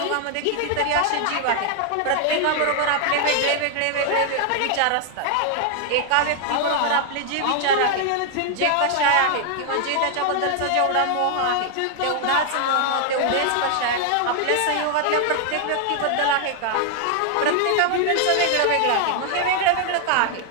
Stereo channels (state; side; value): different; both; correlation 0.00